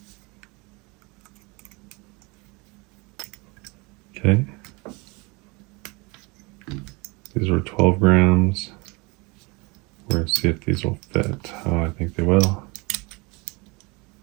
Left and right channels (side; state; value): left; quieter; 27.1 dB